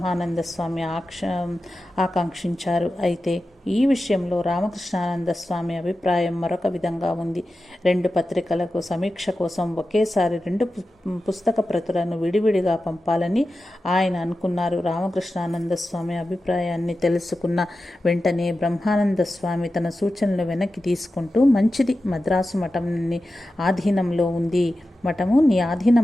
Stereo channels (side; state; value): both; normal; correlation 0.93